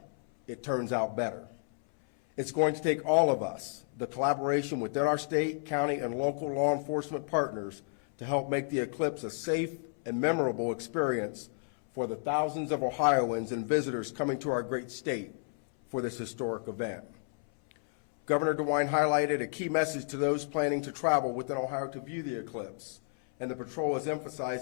it turns out better. It's going to take all of us, the collaboration within our state, county, and local law enforcement partners, to help make the eclipse a safe and memorable experience for the thousands of Ohioans and visitors coming to our great state for this historic event. Governor DeWine highlighted a key message to those planning to travel within Ohio to view the eclipse, and the patrol is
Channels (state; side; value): silent; right; 57 dB below the other